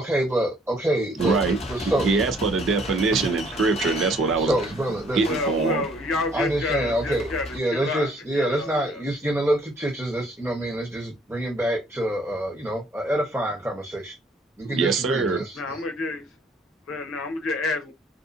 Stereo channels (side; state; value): both; normal; correlation 0.62